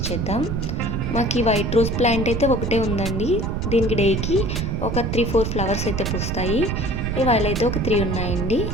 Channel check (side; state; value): right; noise; rumble, 1 dB below the sound